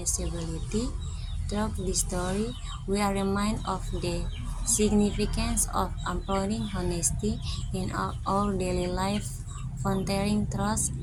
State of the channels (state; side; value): identical; both; correlation 1.00